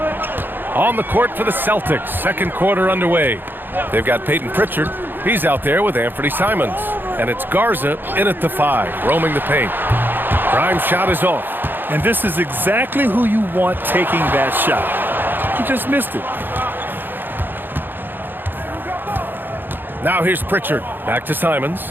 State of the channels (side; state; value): left; late; 0.095 ms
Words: On the court for the Celtics, second quarter underway. They've got Peyton Pritchard. He's out there with Anthony Simons. And it's Garza in at the 5, roaming the paint. Prime shot is off. And this is exactly who you want taking that shot. He just missed it. Now here's Pritchard. Back to Simons.